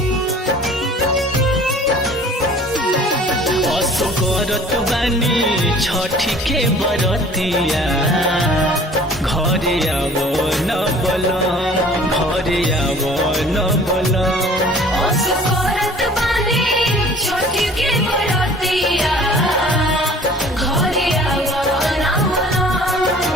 असो करत बानी छठी के बरतिया घरे आव न बलम घरे आव न बलम असो करत बानी छठी के बरतिया घरे आव ना बलम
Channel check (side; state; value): both; normal; correlation 0.49